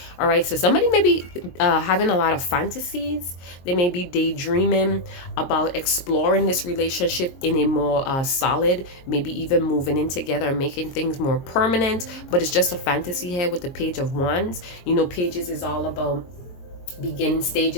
All right, so somebody may be having a lot of fantasies. They may be daydreaming about exploring this relationship in a more solid, maybe even moving in together and making things more permanent. But it's just a fantasy here with the Page of Wands. You know, pages is all about beginning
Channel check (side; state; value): right; late; 22 ms